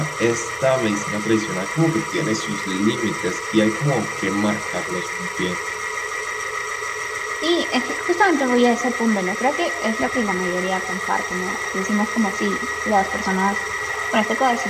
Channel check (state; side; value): identical; both; correlation 1.00